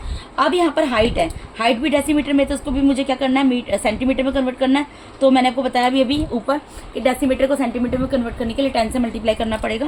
अब यहाँ पर हाइट है, हाइट भी डेसीमीटर में, तो उसको भी मुझे क्या करना है, सेंटीमीटर में कन्वर्ट करना है। तो मैंने आपको बताया अभी ऊपर कि डेसीमीटर को सेंटीमीटर में कन्वर्ट करने के लिए 10 से मल्टीप्लाई करना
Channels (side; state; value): both; identical; correlation 1.00